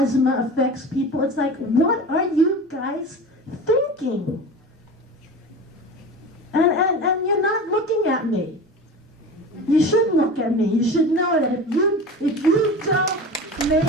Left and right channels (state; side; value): normal; both; correlation 0.32